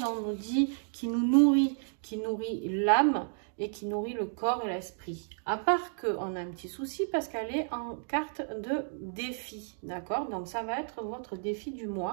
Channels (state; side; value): silent; left; digital silence